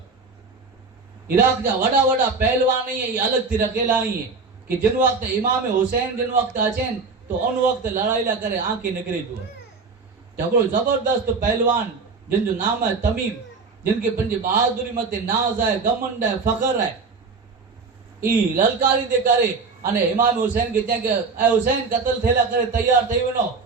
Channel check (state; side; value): quieter; left; 4.4 dB